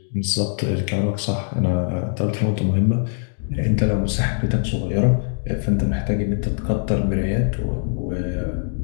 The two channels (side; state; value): right; silent; digital silence